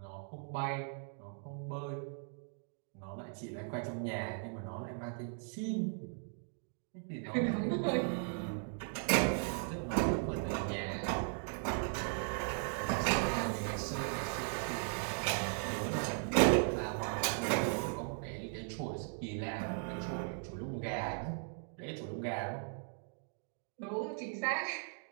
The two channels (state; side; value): silent; left; 52 dB below the other